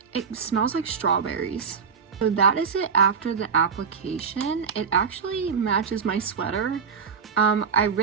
It smells like strawberries. So that is it after the application. It actually matches my sweater. I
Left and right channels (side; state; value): left; quieter; 6.3 dB